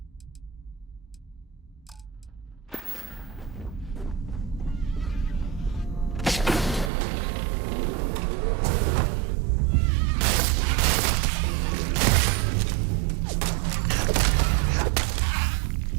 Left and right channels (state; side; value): drops out; left; at 6.9 s